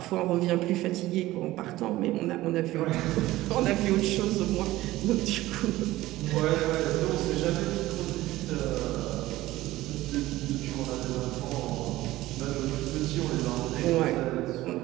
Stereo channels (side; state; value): left; quieter; 16.9 dB